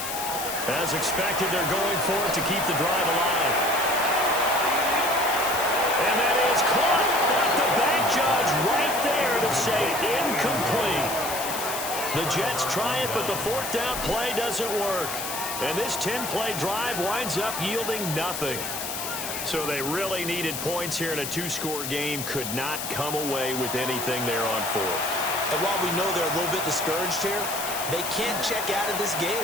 As expected, they're going for it to keep the drive alive. And that is caught. But the back judge right there to say incomplete. The Jets try it, but the 4th down play doesn't work. And this 10-play drive winds up yielding nothing. So they really needed points here in a 2-score game. Could not come away with anything there on 4th. And while we know they're a little bit discouraged here, they can't check out of this game.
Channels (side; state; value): left; noise; hiss, 5 dB below the sound